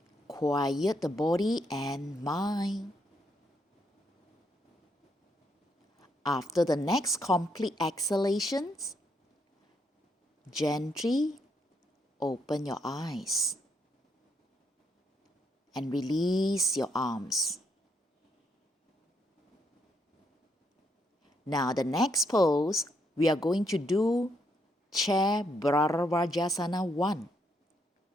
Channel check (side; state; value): both; normal; correlation 0.75